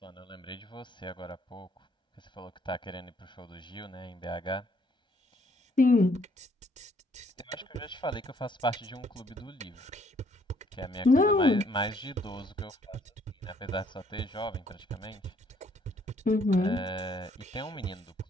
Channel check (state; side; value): normal; both; correlation 0.65